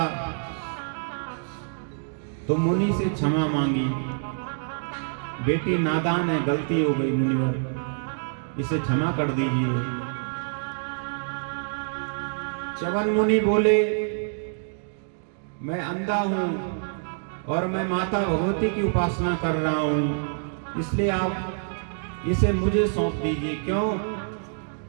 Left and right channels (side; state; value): left; silent; digital silence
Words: तो मुनि से क्षमा मांगी। बेटी नादान है, गलती हो गई मुनिवर, इसे क्षमा कर दीजिए। च्यवन मुनि बोले, मैं अंधा हूं और मैं माता भगवती की उपासना कर रहा हूं, इसलिए आप इसे मुझे सौंप दीजिए। क्यों?